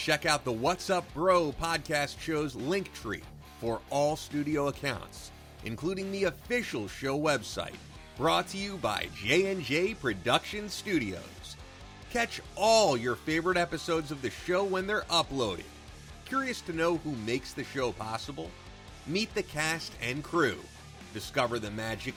out the What's Up Bro podcast show's link tree for all studio accounts, including the official show website, brought to you by J&J Production Studios. Catch all your favorite episodes of the show when they're uploaded. Curious to know who makes the show possible? Meet the cast and crew. Discover the magic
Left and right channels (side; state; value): both; identical; correlation 1.00